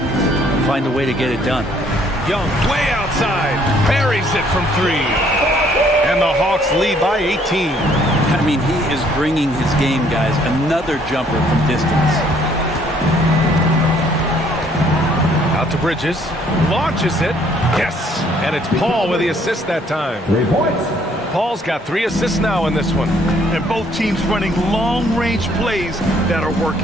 find a way to get it done. Young way outside. Buries it from 3. And the Hawks lead by 18. I mean, he is bringing his game, guys. Another jumper from distance. Out to Bridges. Launches it. Yes. And it's Paul with the assist that time. 3 points. Paul's got 3 assists now in this one. And both teams running long-range plays that are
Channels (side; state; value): both; normal; correlation 0.63